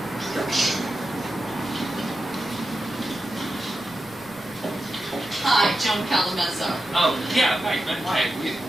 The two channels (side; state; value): right; noise; rumble, 26 dB below the sound